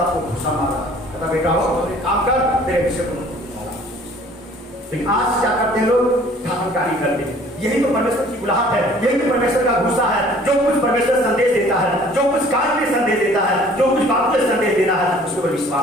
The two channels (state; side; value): normal; both; correlation 0.53